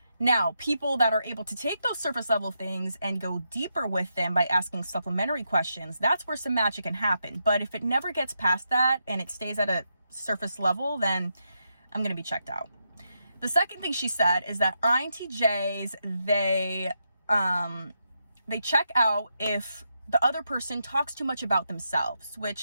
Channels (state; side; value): inverted; both; correlation -0.83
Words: Now, people that are able to take those surface level things and go deeper with them by asking supplementary questions, that's where some magic can happen. But if it never gets past that and it stays at a surface level, then I'm going to be checked out. The second thing she said is that INTJs, they check out if the other person talks too much about themselves,